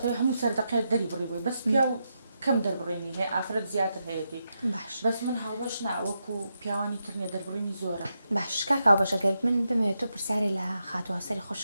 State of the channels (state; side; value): inverted; both; correlation -0.85